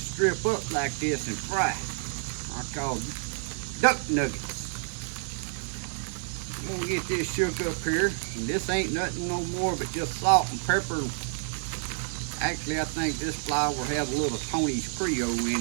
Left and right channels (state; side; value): silent; left; 59 dB below the other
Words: up like this and fry. I call them duck nuggets. I'm gonna get this shook up here, and this ain't nothing no more but just salt and pepper. Actually, I think this flour has a little Tony's Creole in